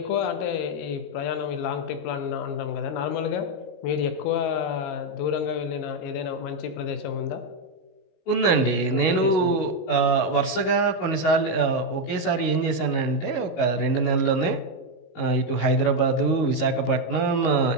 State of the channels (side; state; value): right; late; 19 ms